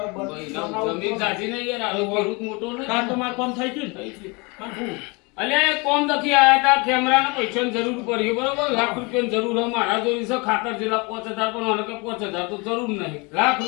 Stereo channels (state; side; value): quieter; right; 28.4 dB